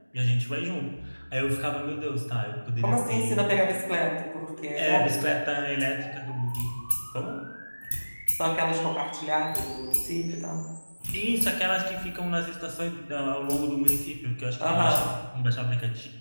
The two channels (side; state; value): both; inverted; correlation -1.00